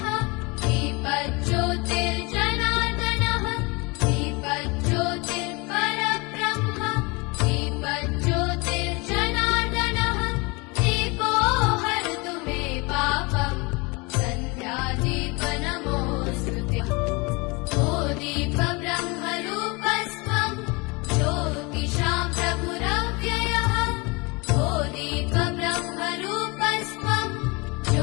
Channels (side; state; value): right; quieter; 27.4 dB